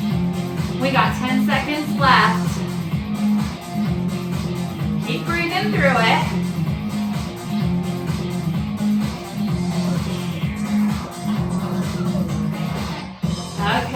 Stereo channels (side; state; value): both; identical; correlation 1.00